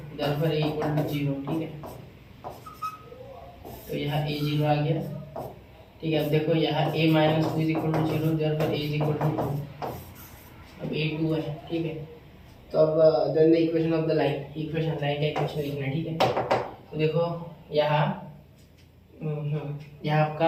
therefore a equal to 0, ठीक है। तो यहाँ a 0 आ गया, ठीक है। अब देखो यहाँ a minus 2 is equal to 0, therefore a is equal to 2, अब a 2 है, ठीक है। तो अब then the equation of the line, equation line का इक्वेशन लिखना है, ठीक है। तो देखो यहाँ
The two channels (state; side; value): identical; both; correlation 1.00